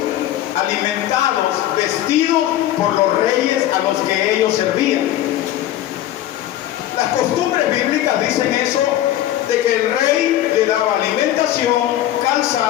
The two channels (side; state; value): right; quieter; 13.1 dB